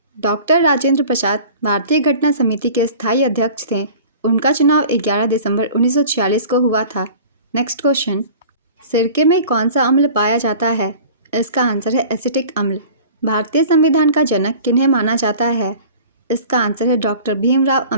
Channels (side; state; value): both; inverted; correlation -0.43